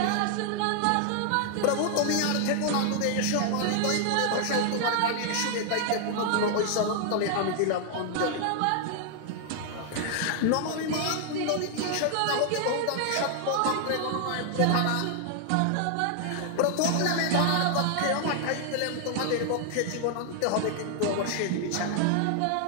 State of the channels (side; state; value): both; different; correlation 0.00